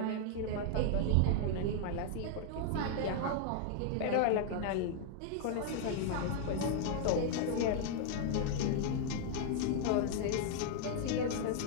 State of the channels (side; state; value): both; different; correlation 0.00